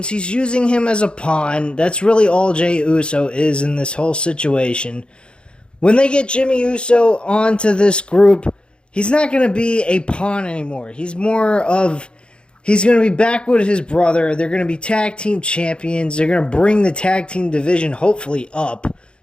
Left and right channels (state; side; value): late; right; 0.054 ms